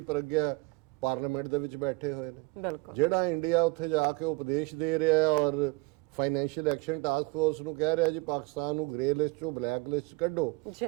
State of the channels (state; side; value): quieter; left; 25.4 dB